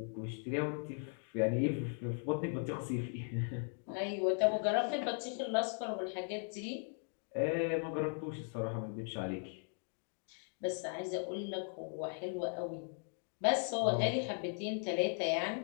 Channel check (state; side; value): silent; right; 52 dB below the other